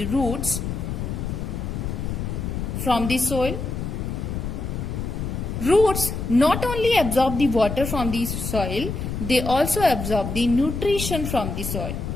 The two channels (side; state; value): left; noise; rumble, 4 dB below the sound